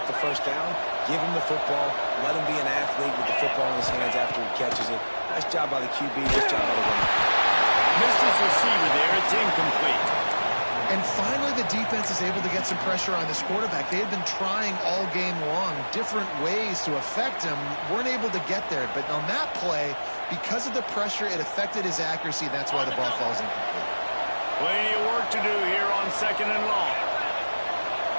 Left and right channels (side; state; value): both; inverted; correlation -1.00